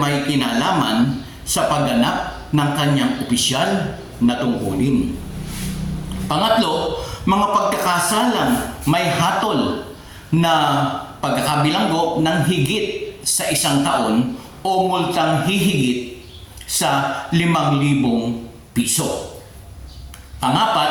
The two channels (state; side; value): identical; both; correlation 1.00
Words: kinalaman sa pagganap ng kanyang opisyal na tungkulin. Pangatlo, mga pagkakasalang may hatol na pagkakabilanggo ng higit sa 1 taon o multang hihigit sa 5,000 piso.